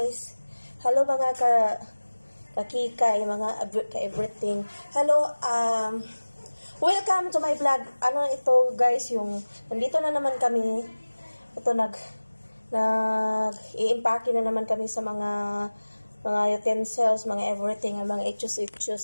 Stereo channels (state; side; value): inverted; both; correlation -1.00